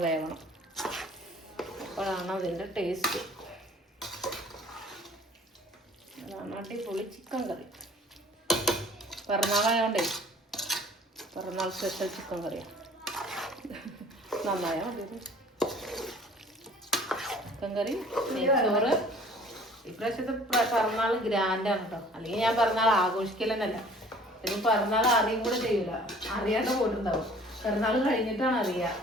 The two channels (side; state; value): both; normal; correlation 0.51